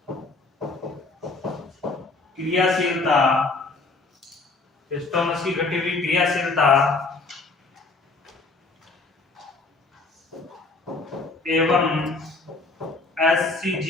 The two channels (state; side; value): quieter; right; 3.6 dB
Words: क्रियाशीलता, स्टोमच की घटी हुई क्रियाशीलता एवं